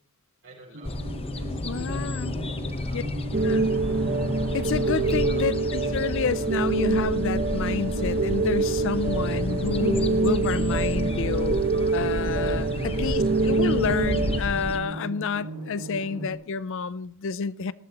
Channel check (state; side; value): normal; both; correlation 0.31